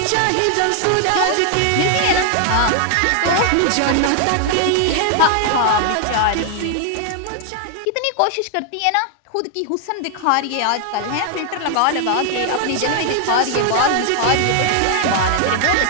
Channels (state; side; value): different; both; correlation 0.00